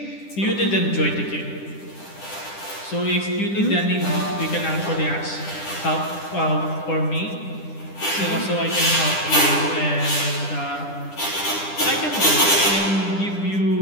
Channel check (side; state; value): right; late; 10 ms